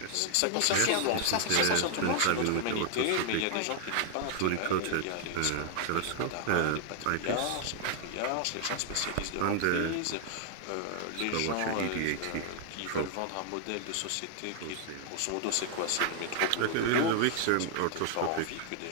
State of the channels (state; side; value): different; both; correlation 0.00